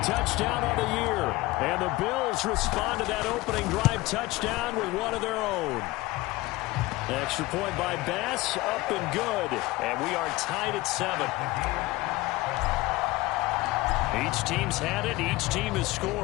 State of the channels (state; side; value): quieter; right; 20.1 dB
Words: touchdown on the year. And the Bills respond to that opening drive touchdown with one of their own. Extra point by Bass, up and good. And we are tied at 7. Each team's had it. Each team has